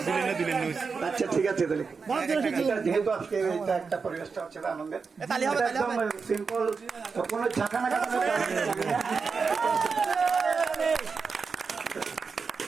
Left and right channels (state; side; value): quieter; left; 5.1 dB